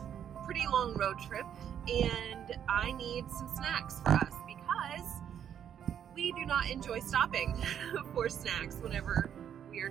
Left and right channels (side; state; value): left; quieter; 9.1 dB